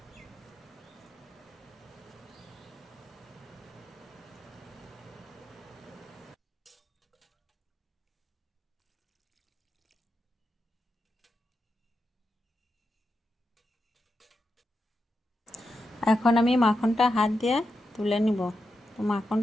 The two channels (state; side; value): normal; both; correlation 0.87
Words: এখন আমি মাখনটা হাত দিয়ে তুলে নিব। তো